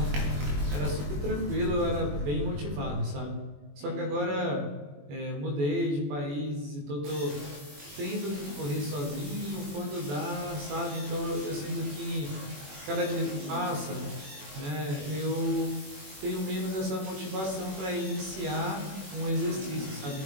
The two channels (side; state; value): left; late; 21 ms